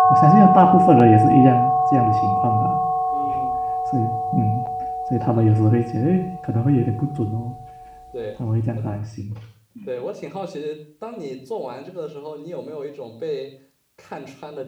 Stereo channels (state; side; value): identical; both; correlation 1.00